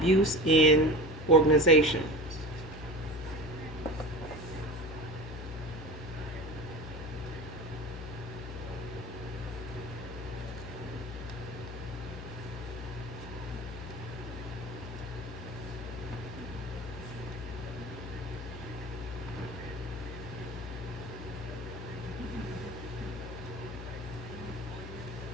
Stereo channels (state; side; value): noise; left; hum, 9 dB below the sound